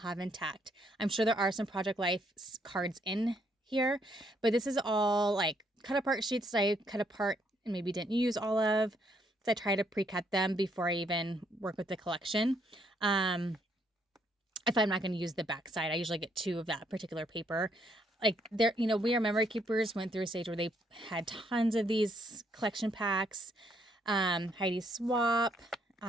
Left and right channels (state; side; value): normal; both; correlation 0.71